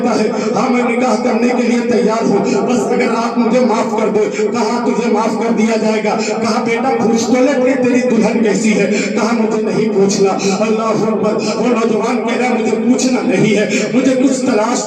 ہے ہاں میں نکاح کرنے کے لیے تیار ہوں, بس اگر آپ مجھے معاف کر دو. کہا تجھے معاف کر دیا جائے گا. کہا بیٹا پوچھ تو لے کہ تیری دلہن کیسی ہے. کہا مجھے نہیں پوچھنا. اللہ اکبر. وہ نوجوان کہہ رہا مجھے پوچھنا نہیں ہے, مجھے کچھ تلاش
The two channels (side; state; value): both; identical; correlation 1.00